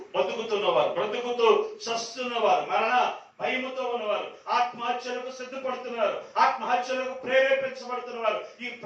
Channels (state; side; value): identical; both; correlation 1.00